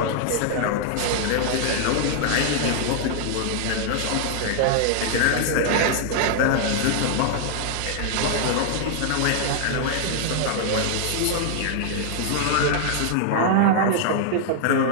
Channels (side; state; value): both; different; correlation 0.00